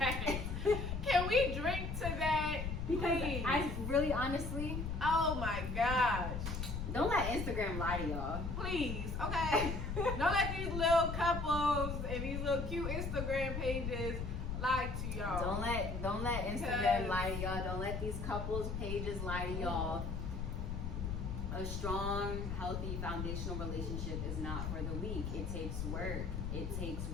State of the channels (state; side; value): noise; left; rumble, 3 dB below the sound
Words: Can we drink to that? Because Please. I really, honestly, Oh my gosh. don't let Instagram lie to y'all. Please, okay? Don't let these little couples and these little cute Instagram pages lie to y'all. Don't let Instagram lie to y'all. Don't let these couples pages lie to y'all. A strong, healthy, foundational relationship is not for the weak. It takes work. It takes